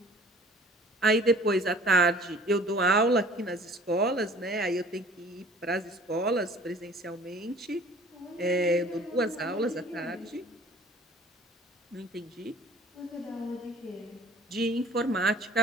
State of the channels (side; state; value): both; normal; correlation 0.50